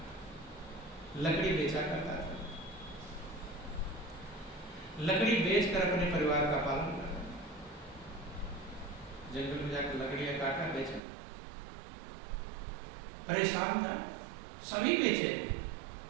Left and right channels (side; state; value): left; drops out; at 11.0 s